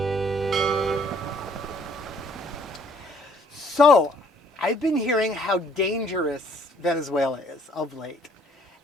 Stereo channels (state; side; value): normal; both; correlation 0.61